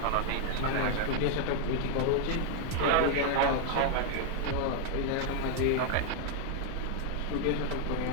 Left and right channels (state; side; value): different; both; correlation 0.00